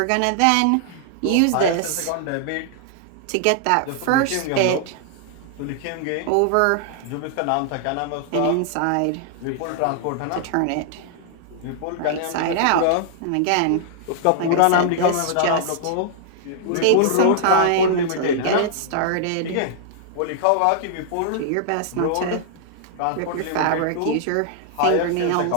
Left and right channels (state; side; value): different; both; correlation -0.01